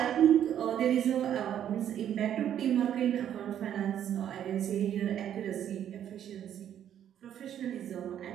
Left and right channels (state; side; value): quieter; left; 10.1 dB